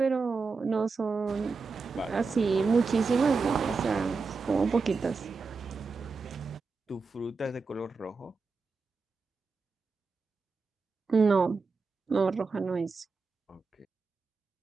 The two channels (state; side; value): quieter; left; 4.4 dB